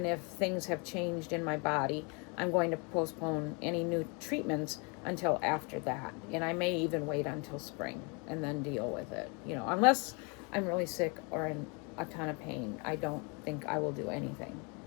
if things have changed in my body, I'm going to postpone any new treatments until after that. And I may even wait until spring and then deal with it. Unless I'm really sick or in a ton of pain, I don't think I will do anything.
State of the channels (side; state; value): right; quieter; 32.9 dB